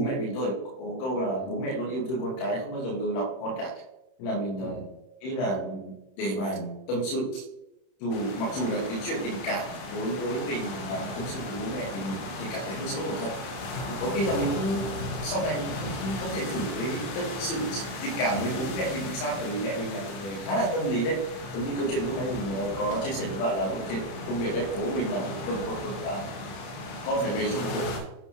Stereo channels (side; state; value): right; late; 31 ms